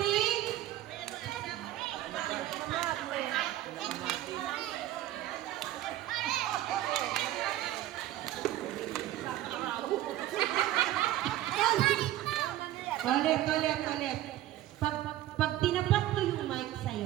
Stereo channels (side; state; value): left; quieter; 14.0 dB